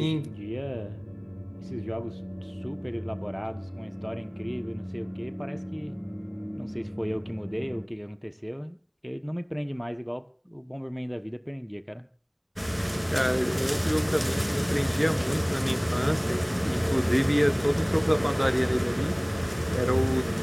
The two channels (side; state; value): both; identical; correlation 1.00